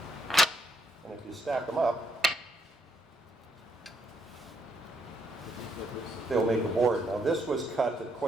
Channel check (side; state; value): both; normal; correlation 0.74